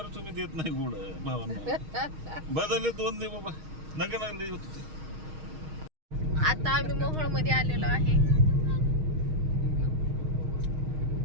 तुम्ही देत नाही गोड भावांना. बदलले 2 दे बाबा. नका लागले. आता आम्ही मोहोळ मध्ये आलेलो आहे.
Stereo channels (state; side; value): late; left; 6.4 ms